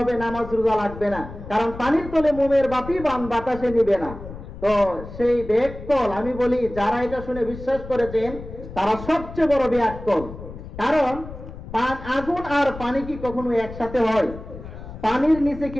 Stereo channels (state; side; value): noise; left; rumble, 13 dB below the sound